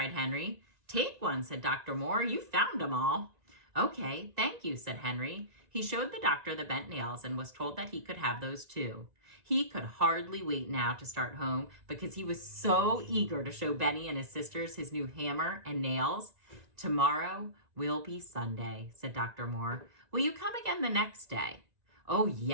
Henry. "Take one," said Dr. Moore. "You found them all." "Okay, thank you," said Henry. He showed the doctor the bent nails and was told that he could have those too. He could hardly wait now to start home because he was so eager to show Benny and his sisters his new hammer and nails. "Tomorrow will be Sunday," said Dr. Moore. "Will you come again the next day?" "Oh,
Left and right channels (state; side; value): late; left; 2.0 ms